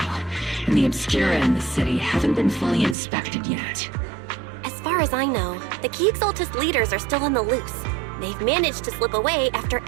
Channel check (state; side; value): drops out; left; at 3.0 s